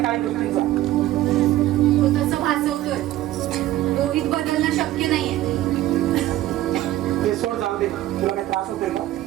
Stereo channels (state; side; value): quieter; left; 14.7 dB